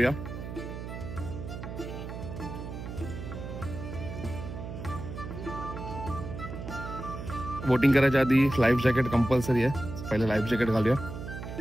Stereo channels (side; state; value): right; noise; hum, 8 dB below the sound